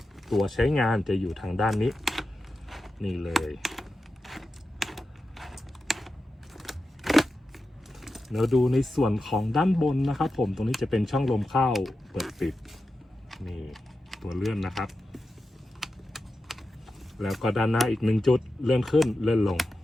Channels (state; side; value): normal; both; correlation 0.91